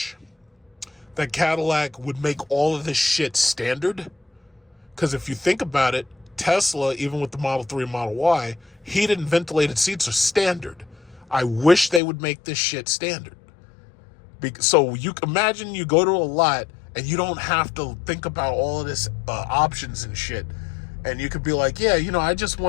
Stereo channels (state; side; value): drops out; right; at 12.0 s